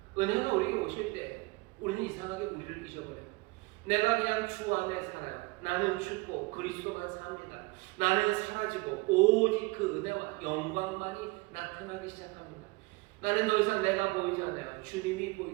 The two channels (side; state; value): left; quieter; 24.3 dB